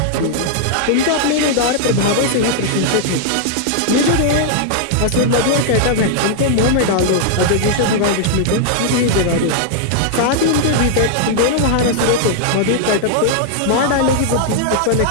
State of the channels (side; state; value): both; different; correlation -0.01